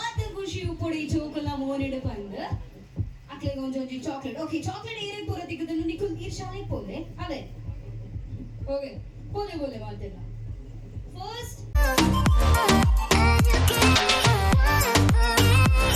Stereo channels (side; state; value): both; identical; correlation 1.00